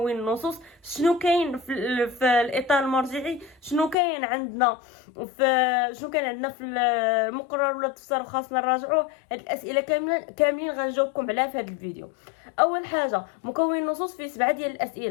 النصوص، شنو كاين في الاطار المرجعي، شنو كاين عندنا في المقرر ولا التفسير خاصنا نراجعوه. هاد الاسئله كاملين غنجاوبكم عليها في هذا الفيديو. اول حاجه مكون النصوص فيه 7 ديال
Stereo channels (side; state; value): right; drops out; at 4.0 s